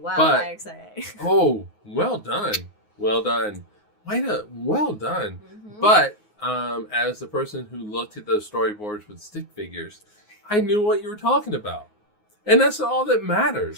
Oh, well done. Well done. Well done. Mm-hmm. But as the person who looked at those storyboards with stick figures, I knew what you were talking about. And that's all that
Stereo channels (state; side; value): late; left; 6.1 ms